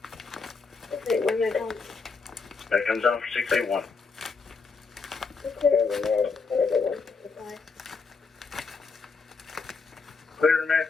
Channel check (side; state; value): right; quieter; 4.7 dB